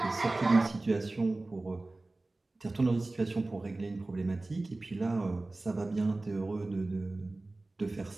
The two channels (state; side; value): quieter; left; 3.0 dB